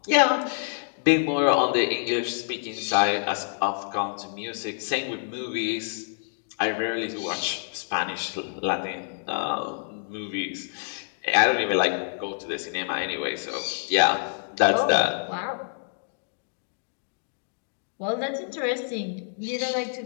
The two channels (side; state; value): right; silent; digital silence